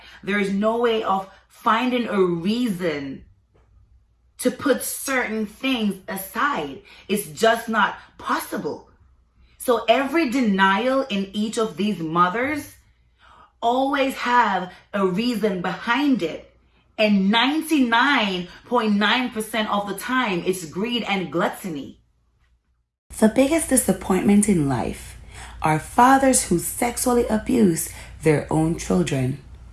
There's no way of finding a reason to put certain things aside. It's just not possible. So every denial in each of these mothers always have a reason behind it. And 99.9% of the time, it's greed and gluttony. The biggest disappointment in life are fathers who sexually abuse their own children.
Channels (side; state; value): both; identical; correlation 1.00